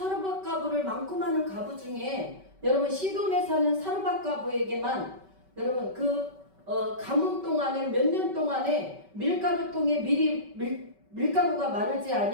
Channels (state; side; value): late; left; 5.2 ms